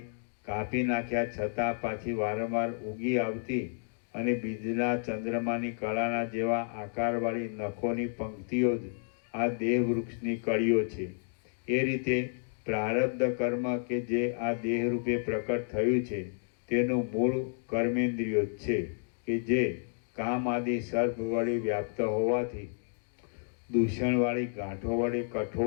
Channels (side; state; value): right; silent; digital silence